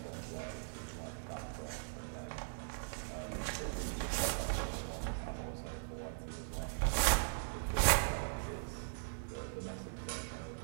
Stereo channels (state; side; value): silent; left; digital silence